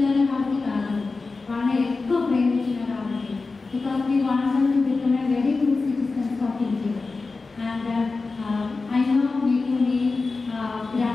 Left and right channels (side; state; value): right; quieter; 3.9 dB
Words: కాబట్టి కాదు, వాళ్ళని ఎక్కువ ప్రేమించిన కాబట్టి. Because we want them to become a very good citizens of India. And I know మీకు మీ